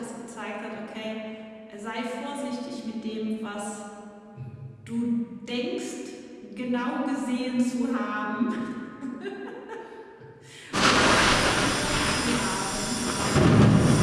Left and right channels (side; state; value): both; identical; correlation 1.00